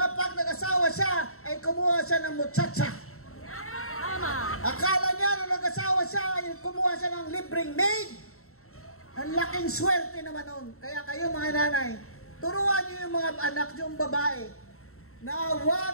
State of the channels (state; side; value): late; right; 0.63 ms